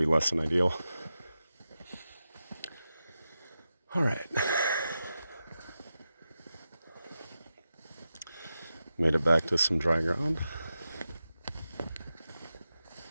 less than ideal. All right. Made it back to some dry ground.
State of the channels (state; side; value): inverted; both; correlation -0.91